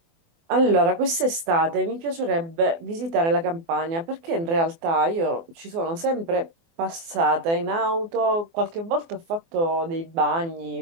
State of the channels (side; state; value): left; late; 24 ms